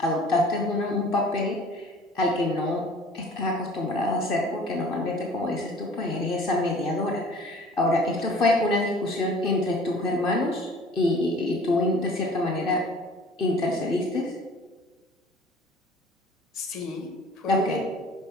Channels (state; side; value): normal; both; correlation 0.48